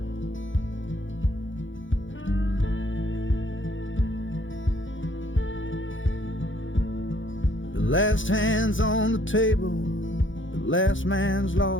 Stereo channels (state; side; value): late; right; 0.56 ms